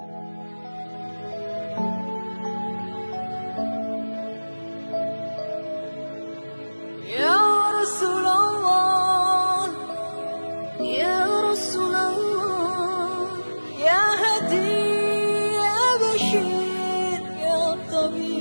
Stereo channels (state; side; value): inverted; both; correlation -1.00